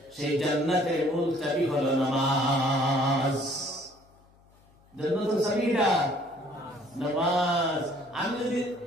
সেই জান্নাতের মূল চাবি হলো নামাজ জান্নাতের চাবিটা নামাজ আমি যদি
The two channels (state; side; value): noise; left; hum, 30 dB below the sound